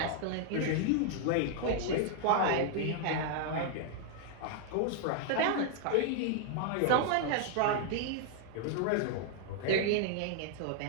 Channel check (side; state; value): both; different; correlation 0.00